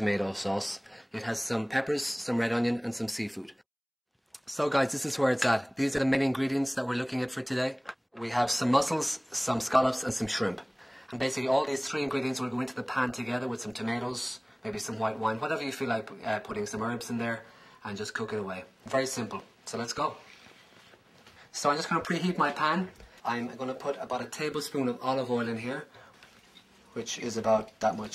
sauce. It has some peppers, some red onion and some seafood. So guys, this is where it's at. These are the main ingredients that we're looking at for today. We have some mussels, some scallops and some shrimp. And basically all these three ingredients will go into the pan together with some tomatoes, maybe some white wine, whatever you feel like putting some herbs in there, and just cook it away. Very simple. So let's go. So I'm just going to preheat my pan. I'm going to put about a tablespoon of olive oil in here, which is about that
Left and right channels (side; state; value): both; identical; correlation 1.00